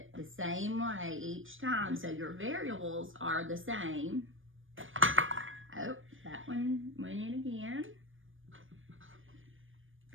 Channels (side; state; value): left; late; 0.58 ms